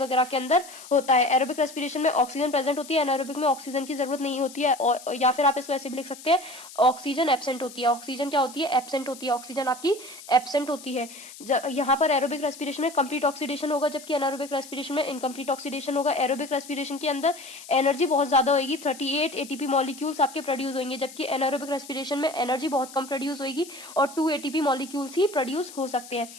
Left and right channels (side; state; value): left; noise; hiss, 17 dB below the sound